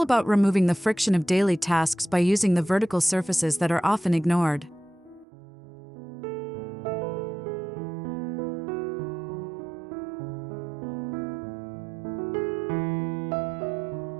about removing the friction of daily tasks by using the vertical surfaces that are often ignored.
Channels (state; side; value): drops out; left; at 5.2 s